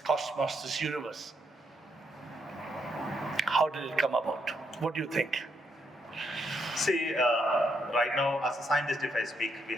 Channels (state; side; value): normal; both; correlation 0.77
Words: this universe. How did it come about? What do you think? See, right now, as a scientist, if I speak, we